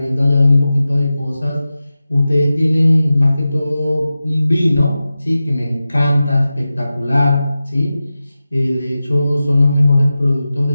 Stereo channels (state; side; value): inverted; both; correlation -0.94